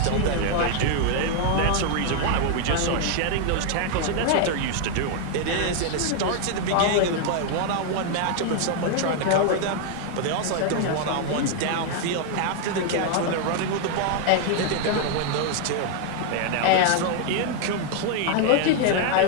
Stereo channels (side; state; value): both; different; correlation 0.00